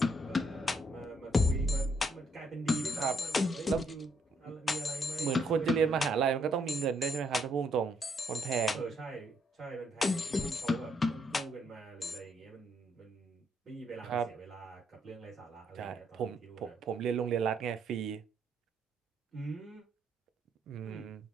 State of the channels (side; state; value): both; normal; correlation 0.73